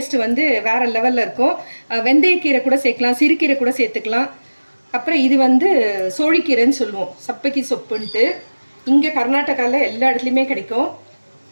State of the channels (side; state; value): both; inverted; correlation -1.00